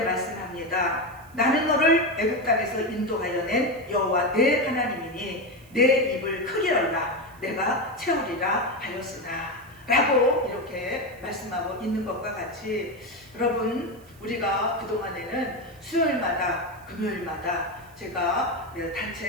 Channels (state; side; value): noise; right; hiss, 27 dB below the sound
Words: 말씀합니다. 나는 너를 애굽 땅에서 인도하여 낸 여호와 내 하나님이니 내 입을 크게 열라 내가 채우리라 하였으나, 라고 이렇게 말씀하고 있는 것과 같이, 여러분, 우리가 그동안에는 수요일마다 금요일마다 제가